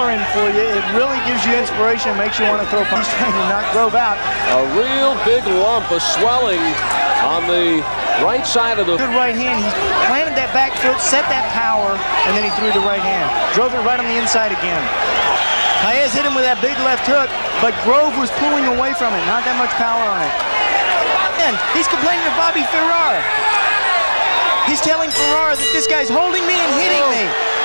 for you. It really gives you inspiration and makes you want to throw punches. He's trying to knock Grove out. A real big lump of swelling on the right side of the... Good right hand. He planted that back foot, set that power, and then he threw the right hand. Drove it right on the inside again. Paez hit him with that big left hook, but Grove was pulling away from it. Not that much power on it. And he's complaining to Bobby Ferrar. He's telling Ferrar that this guy's holding me and hitting me.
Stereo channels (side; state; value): both; inverted; correlation -1.00